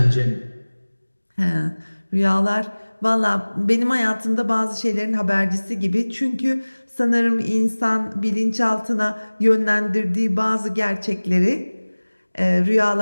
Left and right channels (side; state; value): both; inverted; correlation -1.00